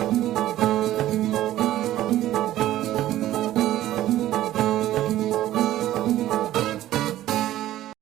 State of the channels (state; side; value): quieter; left; 13.9 dB